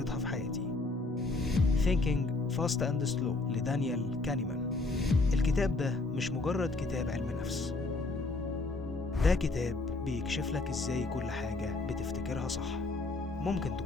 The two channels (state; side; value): quieter; right; 3.4 dB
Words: في حياتي، Thinking Fast and Slow لدانيال كانيمان. الكتاب ده مش مجرد كتاب علم نفس، ده كتاب بيكشف لك ازاي كل حاجة بتفتكرها صح ممكن